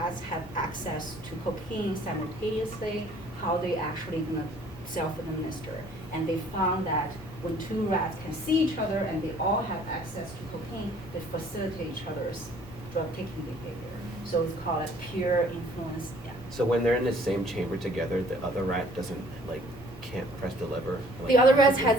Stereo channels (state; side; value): normal; both; correlation 0.56